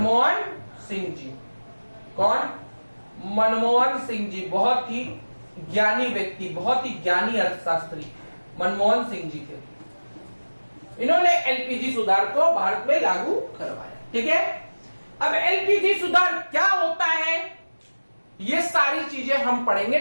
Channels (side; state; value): both; inverted; correlation -1.00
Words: सिंह जी। कौन? मनमोहन सिंह जी। बहुत ही ज्ञानी व्यक्ति, बहुत ही ज्ञानी अर्थशास्त्री मनमोहन सिंह जी थे। इन्होंने एलपीजी सुधार को भारत में लागू करवाया। ठीक है? अब एलपीजी सुधार क्या होता है, ये सारी चीजें हम पढ़ेंगे